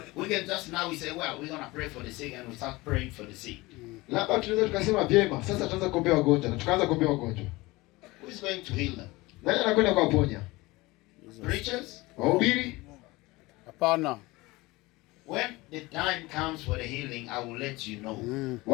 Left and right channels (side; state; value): right; quieter; 21.4 dB